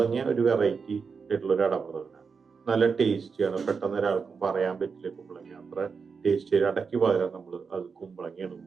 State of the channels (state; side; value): quieter; left; 5.4 dB